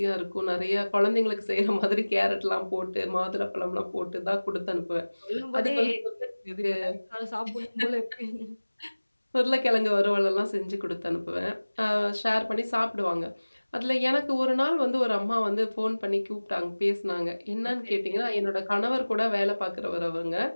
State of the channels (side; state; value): both; inverted; correlation -1.00